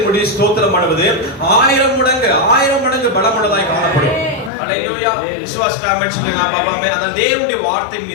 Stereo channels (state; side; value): drops out; right; at 4.5 s